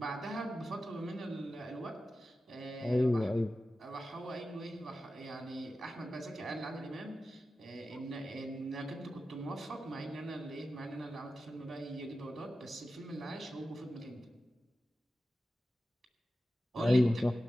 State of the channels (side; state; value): both; normal; correlation 0.93